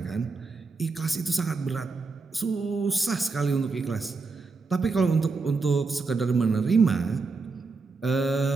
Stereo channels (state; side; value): quieter; left; 4.2 dB